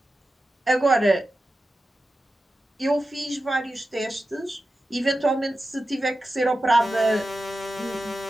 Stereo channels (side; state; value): both; normal; correlation 0.92